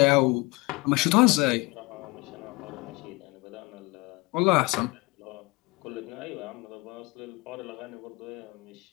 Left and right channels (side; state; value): right; quieter; 25.5 dB